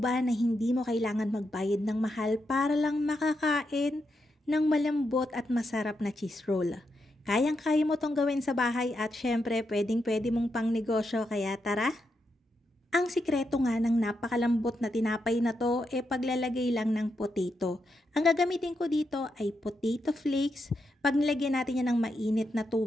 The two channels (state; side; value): normal; both; correlation 0.83